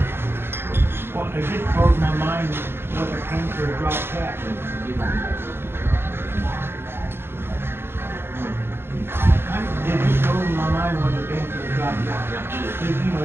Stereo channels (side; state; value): left; late; 0.11 ms